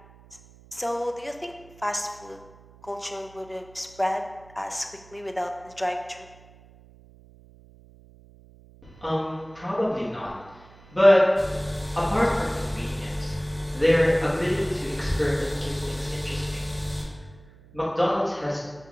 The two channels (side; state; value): right; noise; hum, 24 dB below the sound